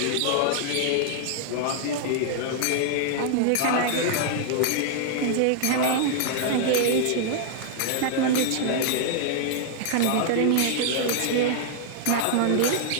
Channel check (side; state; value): both; different; correlation -0.01